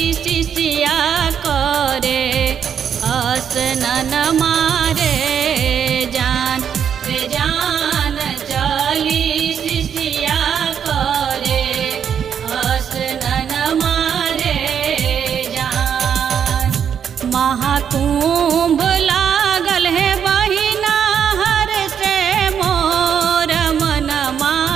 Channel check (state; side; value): quieter; left; 8.1 dB